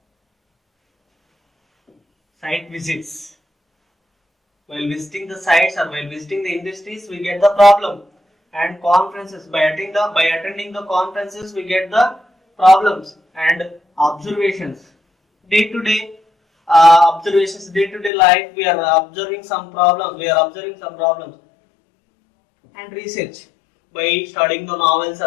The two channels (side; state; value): right; drops out; at 18.1 s